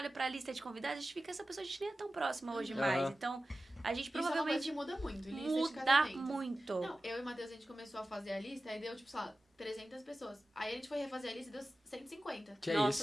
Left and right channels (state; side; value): normal; both; correlation 0.95